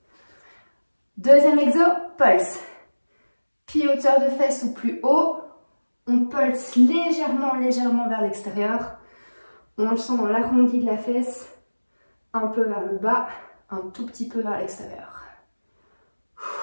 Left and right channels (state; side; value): inverted; both; correlation -1.00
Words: Deuxième exo, pulse. Pied hauteur de fesses ou plus haut. On pulse légèrement vers l'extérieur. On le sent dans l'arrondi de la fesse. Un peu vers le bas, un tout petit peu vers l'extérieur.